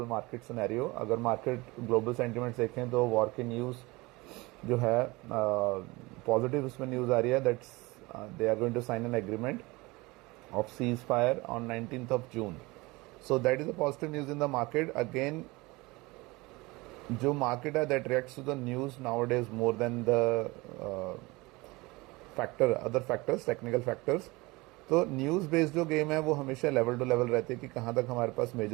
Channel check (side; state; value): left; quieter; 23.0 dB